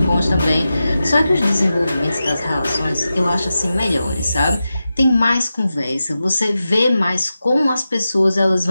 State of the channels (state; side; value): inverted; both; correlation -0.92